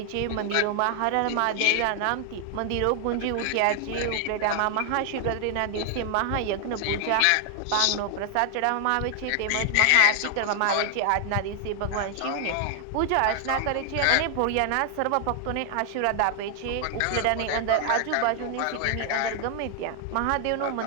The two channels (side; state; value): both; different; correlation 0.00